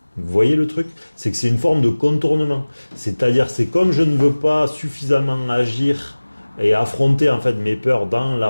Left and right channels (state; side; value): inverted; both; correlation -1.00